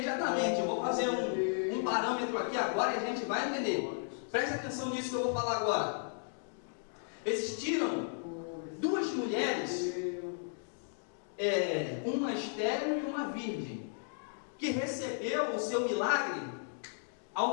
Eu vou fazer um parâmetro aqui agora e a gente vai entender. Preste atenção nisso que eu vou falar agora. Existiram 2 mulheres, uma estéril e uma virgem, que recebeu o seu milagre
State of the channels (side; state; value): right; silent; digital silence